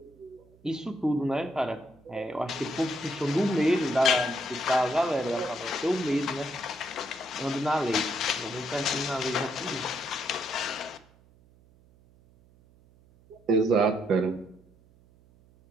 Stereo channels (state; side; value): noise; right; hum, 28 dB below the sound